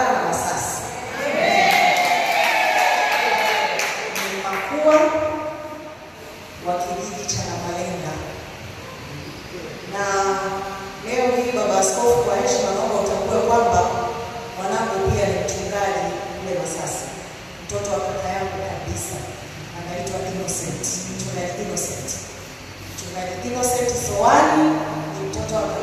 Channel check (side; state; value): both; identical; correlation 1.00